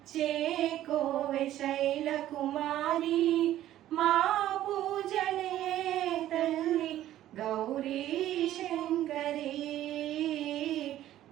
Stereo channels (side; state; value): left; quieter; 13.1 dB